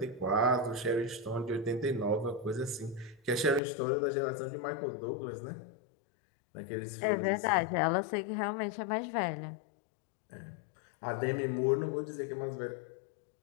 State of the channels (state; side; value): drops out; right; at 3.6 s